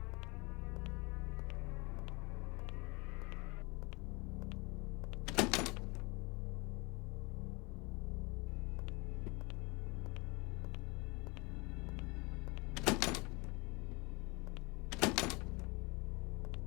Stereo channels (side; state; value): right; quieter; 27.2 dB